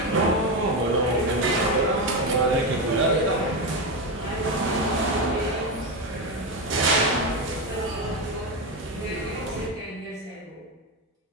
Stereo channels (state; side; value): normal; both; correlation 0.12